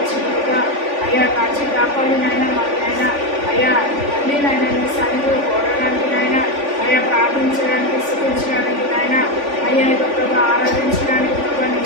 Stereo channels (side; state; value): left; late; 3.5 ms